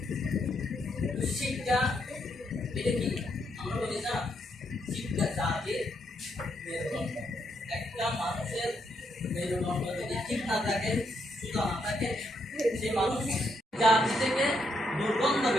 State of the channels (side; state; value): both; normal; correlation 0.77